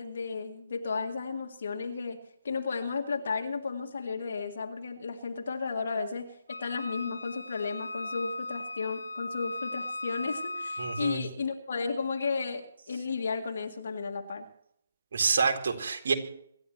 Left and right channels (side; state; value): both; inverted; correlation -0.83